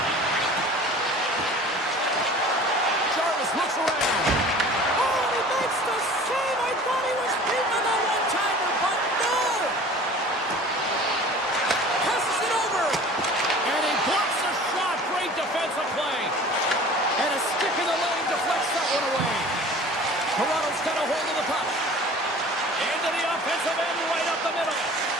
Jarvis looks around. Oh, he makes the save. I thought he was beaten on that one-timer, but no. Passes it over. And he blocks a shot. Great defensive play. And a stick in the lane deflects that one away. Toronto's got a hold of the puck. Into the offensive end, right up the middle.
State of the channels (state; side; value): normal; both; correlation 0.44